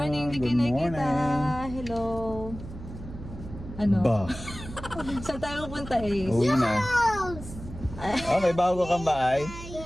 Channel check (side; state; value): right; noise; hum, 13 dB below the sound